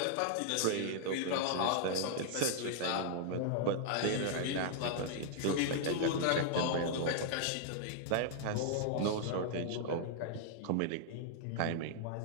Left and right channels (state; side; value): different; both; correlation -0.01